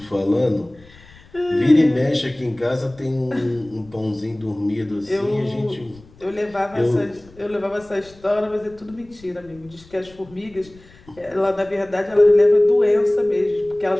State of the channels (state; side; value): noise; left; rumble, 25 dB below the sound